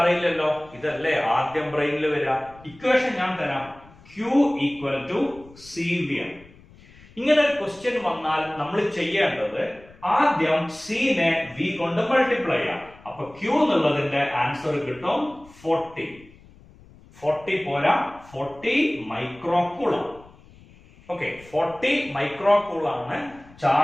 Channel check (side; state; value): left; noise; rumble, 24 dB below the sound